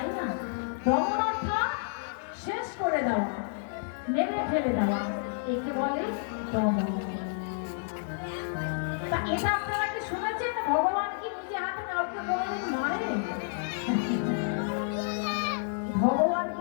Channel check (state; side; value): silent; right; digital silence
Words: না? দমন অর্থাৎ শেষ করে দেওয়া, মেরে ফেলে দেওয়া, একে বলে দমন। তা এটা আপনারা কি শুনেছেন ভগবান কি নিজে হাতে কাউকে কোনোদিন মারে? ভগবান